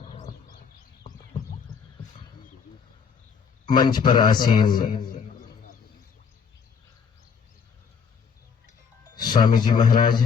मंच पर आसीन स्वामी जी महाराज,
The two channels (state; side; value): quieter; right; 6.4 dB